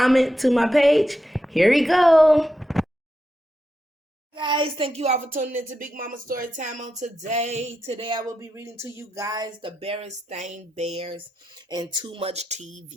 to my page. Here we go. Guys, thank you all for tuning into Big Mama Story Time on today. Today I will be reading to you guys the Berenstain Bears and Too Much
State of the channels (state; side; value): normal; both; correlation 0.87